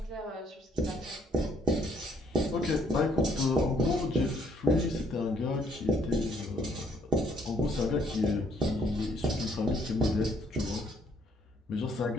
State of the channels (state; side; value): normal; both; correlation 0.67